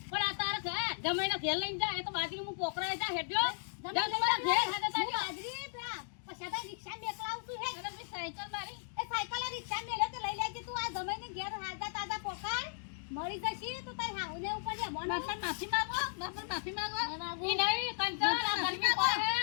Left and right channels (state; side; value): silent; right; digital silence